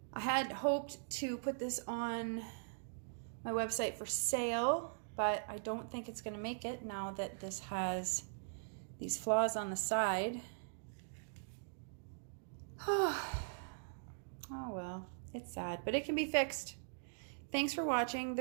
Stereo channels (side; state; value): left; silent; digital silence